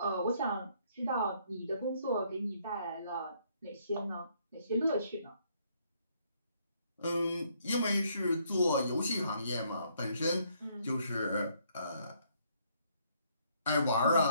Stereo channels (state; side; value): inverted; both; correlation -0.69